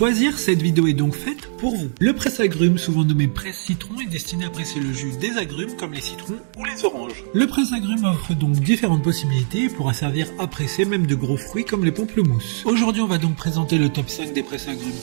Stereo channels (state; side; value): silent; left; digital silence